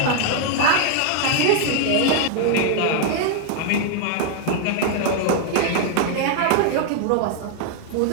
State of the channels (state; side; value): different; both; correlation 0.00